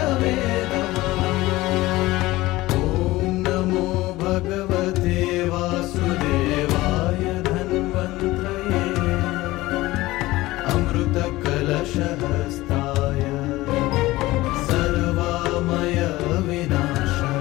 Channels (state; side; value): quieter; right; 18.5 dB